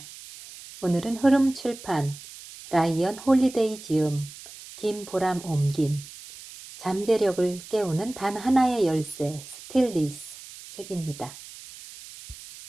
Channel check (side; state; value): right; noise; hiss, 16 dB below the sound